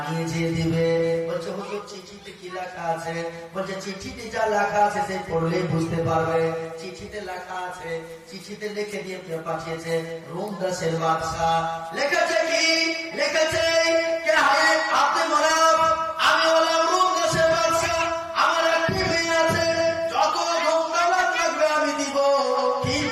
নিয়ে যেয়ে দিবে। বলছে হুজুর চিঠিতে কি লেখা আছে? বলছে চিঠিতে যা লেখা আছে সে পড়লেই বুঝতে পারবে। চিঠিতে লেখা আছে, চিঠিতে লিখে দিয়ে পাঠিয়েছে রোম দেশের বাদশা। লিখেছে কি? লিখেছে কে হায় আব্দুল মানাফ, আমি হলাম রোম দেশের বাদশা, আমার একটি মেয়ে আছে, যত ধনদৌলত লাগবে আমি দিব,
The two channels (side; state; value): both; identical; correlation 1.00